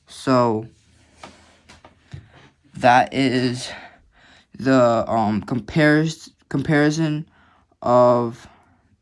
So that is the comparison of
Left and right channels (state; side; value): identical; both; correlation 1.00